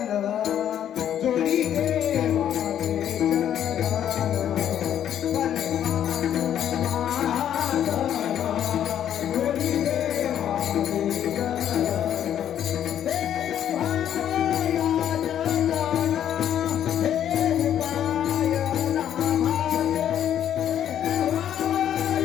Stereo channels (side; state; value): right; quieter; 10.2 dB